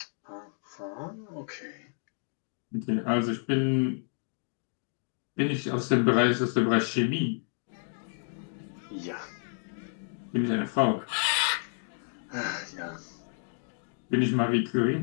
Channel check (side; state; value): right; silent; 58 dB below the other